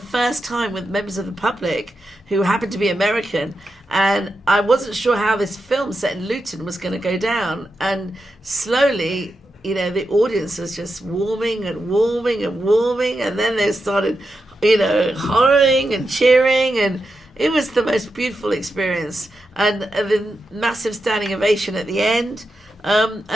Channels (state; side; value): normal; both; correlation 0.88